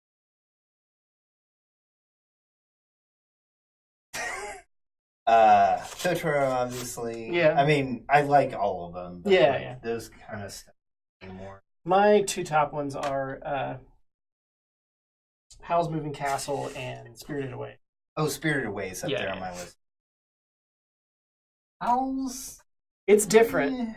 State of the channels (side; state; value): both; identical; correlation 1.00